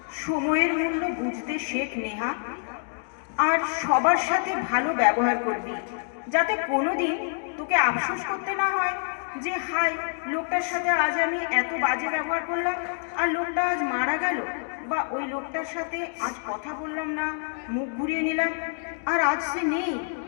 সময়ের মূল্য বুঝতে শেখ নেহা, আর সবার সাথে ভালো ব্যবহার করবি, যাতে কোনোদিন তোকে আফসোস করতে না হয় যে হাই, লোকটার সাথে আজ আমি এত বাজে ব্যবহার করলাম আর লোকটা আজ মারা গেল, বা ওই লোকটার সাথে আজ কথা বললাম না, মুখ ঘুরিয়ে নিলাম আর আজ সে নেই।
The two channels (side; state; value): right; silent; 60 dB below the other